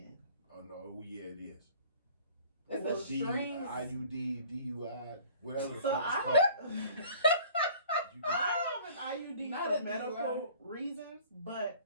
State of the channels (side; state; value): both; inverted; correlation -0.50